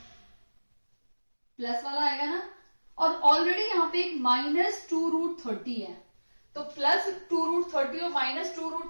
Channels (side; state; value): both; inverted; correlation -1.00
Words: प्लस वाला आएगा ना, और ऑलरेडी यहां पे एक -2√30 है, तो +2√30 और